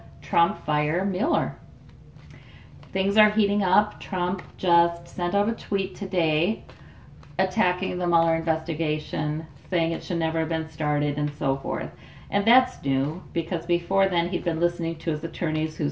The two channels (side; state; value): both; identical; correlation 1.00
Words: Trump fire Mueller? Things are heating up. Trump just sent out a tweet today attacking the Mueller investigation, saying it should never have been started and so forth. And that's new because before then he'd been listening to his attorneys who